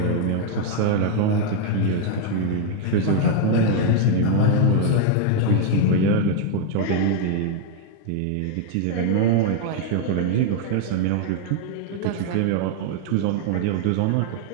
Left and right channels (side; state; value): both; different; correlation 0.00